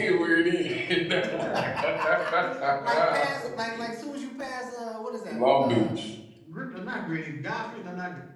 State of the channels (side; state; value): both; identical; correlation 1.00